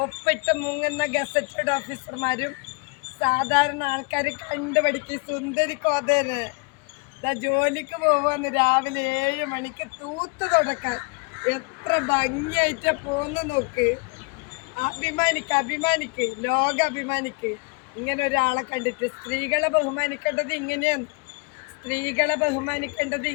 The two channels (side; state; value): right; quieter; 33.6 dB